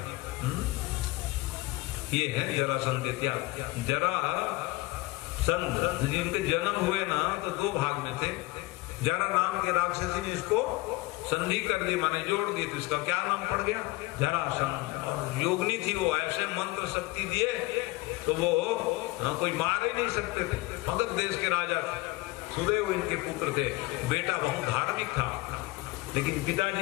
ये है जरासंध के त्याग। जरासंध जिनके जन्म हुए ना तो 2 भाग में थे। जरा नाम के राक्षसी ने इसको संधि कर दी, माने जोड़ दी, तो इसका क्या नाम पड़ गया? जरासंध। और योगनी थी वो, ऐसे मंत्र शक्ति दिए तो वो कोई मार ही नहीं सकते थे। मगध देश के राजा थे। सुदेव इनके पुत्र थे। बेटा बहुत धार्मिक था, लेकिन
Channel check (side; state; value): right; quieter; 21.2 dB